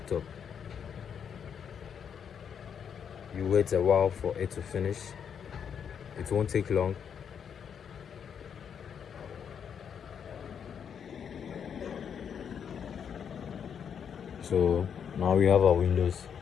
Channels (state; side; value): quieter; right; 7.7 dB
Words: You wait a while for it to finish. It won't take long. So now we have our Windows.